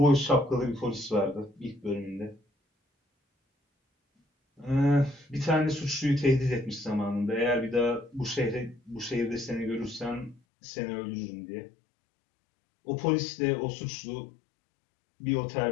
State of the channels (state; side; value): drops out; right; at 10.4 s